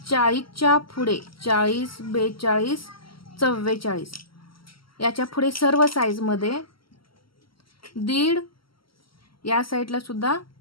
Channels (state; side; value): late; right; 0.74 ms